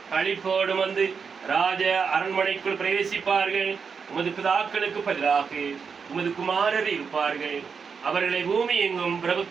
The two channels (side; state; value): left; quieter; 5.9 dB